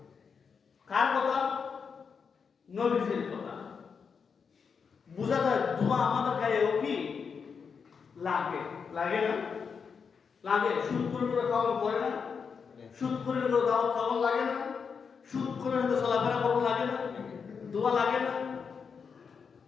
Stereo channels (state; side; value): quieter; right; 6.0 dB